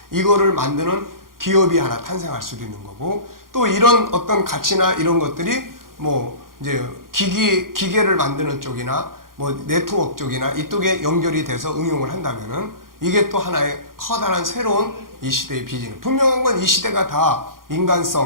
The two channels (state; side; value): late; left; 0.91 ms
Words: 이거를 만드는 기업이 하나 탄생할 수도 있는 거고, 또 이런 어떤 가치나 이런 것들이 뭐 이제 기계를 만드는 쪽이나 뭐 네트워크 쪽이나 이쪽에 연결이 돼서 응용을 한다면은 이게 또 하나의 커다란 새로운 이 시대의 비즈니스. 분명한 건 이 시대가 다